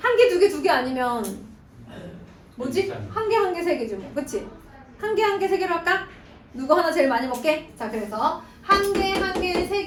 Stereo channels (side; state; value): both; identical; correlation 1.00